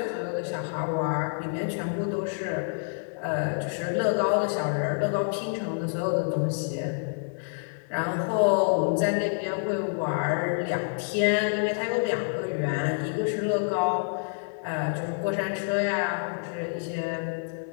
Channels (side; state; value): right; silent; digital silence